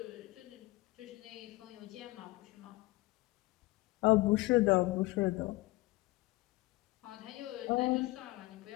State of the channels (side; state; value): right; quieter; 20.4 dB